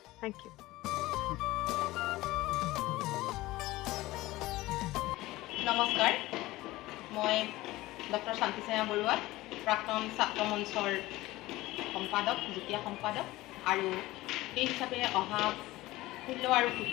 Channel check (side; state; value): right; quieter; 18.3 dB